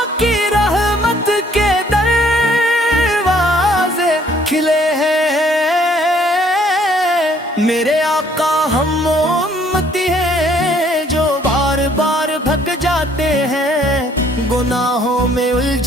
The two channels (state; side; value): normal; both; correlation 0.62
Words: کی رحمت کے دروازے کھلے ہیں۔ میرے آقا ہم امتی ہیں جو بار بار بھگ جاتے ہیں، گناہوں میں